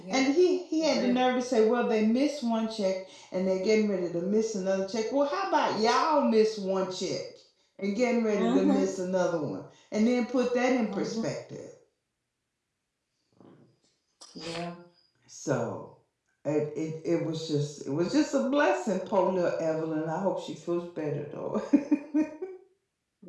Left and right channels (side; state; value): both; identical; correlation 1.00